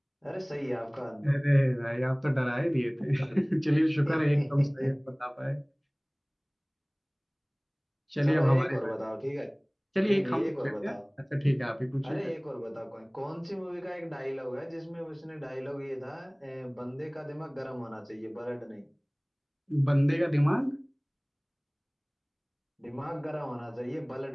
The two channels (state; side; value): identical; both; correlation 1.00